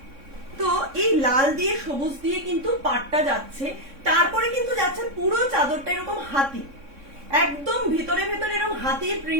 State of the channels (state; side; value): late; left; 3.6 ms